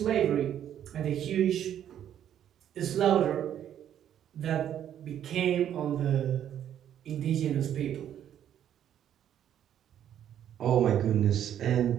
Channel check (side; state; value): left; quieter; 10.3 dB